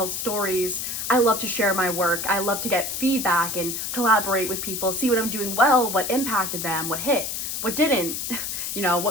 stories. I love to share my work. I love to get feedback and collaborate with people, see what I'm doing well, what impacted them, what hit, what didn't,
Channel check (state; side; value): noise; left; hiss, 4 dB below the sound